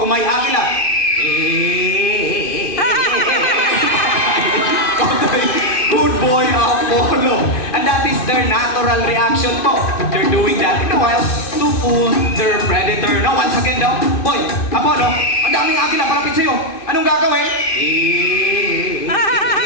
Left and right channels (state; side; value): late; right; 2.5 ms